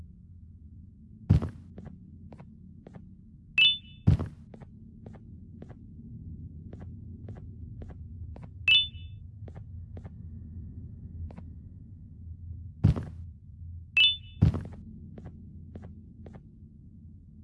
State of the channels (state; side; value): identical; both; correlation 1.00